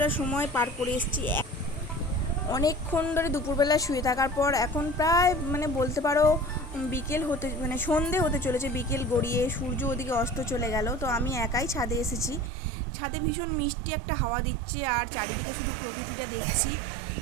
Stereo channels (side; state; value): left; drops out; at 12.5 s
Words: সময় পার করে এসেছি। অনেকক্ষণ ধরে দুপুরবেলা শুয়ে থাকার পর এখন প্রায় মানে বলতে পারো বিকেল হতে মানে সন্ধে হতে চলেছে, বিকেল গড়িয়ে সূর্য ওদিকে অস্ত চলে গেল। তো আমি একাই ছাদে এসেছি। ছাদে ভীষণ মিষ্টি একটা হাওয়া দিচ্ছে, আর চারিদিকে শুধু প্রকৃতিটা দেখছি।